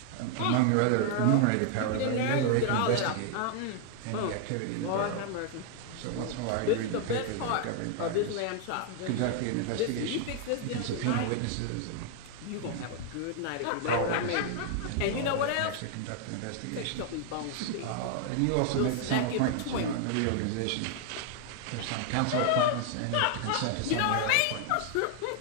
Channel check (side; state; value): both; different; correlation 0.00